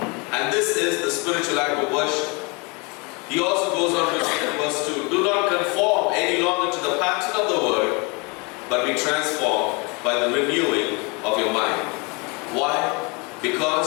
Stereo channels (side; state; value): right; quieter; 29.8 dB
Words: And this is the spiritual act of worship. He also goes on to say in verse 2, do not conform any longer to the pattern of the world, but be transformed by the renewing of your mind. Why?